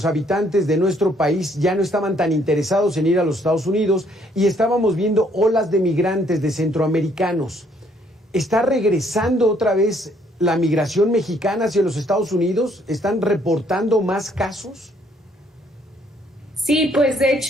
habitantes de nuestro país ya no estaban tan interesados en ir a los Estados Unidos y estábamos viendo olas de migrantes, de centroamericanos. ¿Está regresando otra vez la migración mexicana hacia los Estados Unidos? ¿Están reportando más casos? Sí, pues de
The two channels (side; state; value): both; normal; correlation 0.66